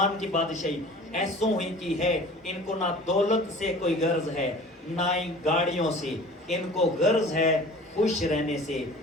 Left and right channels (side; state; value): both; normal; correlation 0.44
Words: کی بادشاہی ایسوں ہی کی ہے، ان کو نہ دولت سے کوئی غرض ہے نہ ہی گاڑیوں سے، ان کو غرض ہے خوش رہنے سے۔